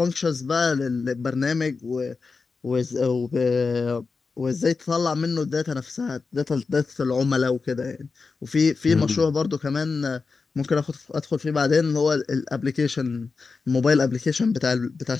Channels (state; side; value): quieter; right; 4.5 dB